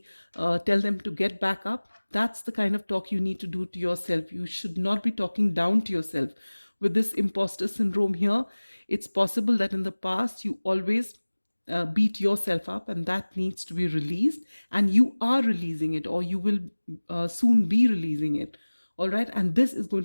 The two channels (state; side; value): inverted; both; correlation -1.00